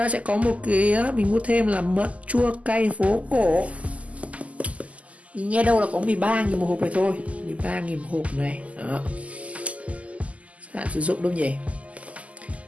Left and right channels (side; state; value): left; late; 0.069 ms